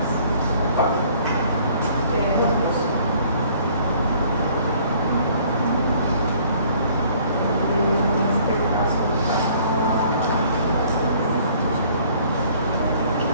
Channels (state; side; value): inverted; both; correlation -0.58